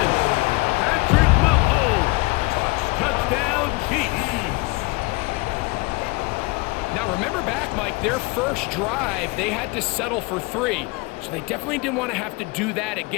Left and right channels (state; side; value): quieter; right; 25.3 dB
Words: Patrick Mahomes. Touchdown, Chiefs. now remember back, Mike, their first drive, they had to settle for 3. So they definitely didn't want to have to do that